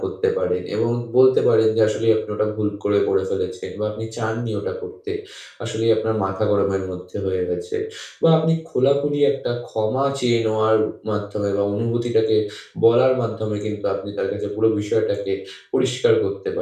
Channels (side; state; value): both; identical; correlation 1.00